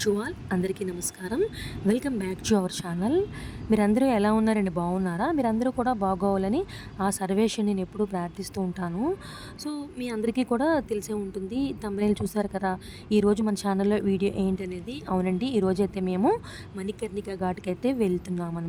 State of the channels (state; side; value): identical; both; correlation 1.00